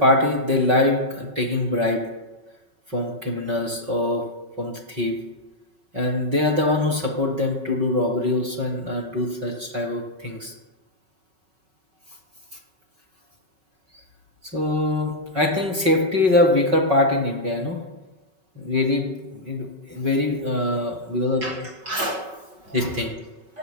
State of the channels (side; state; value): left; late; 5.3 ms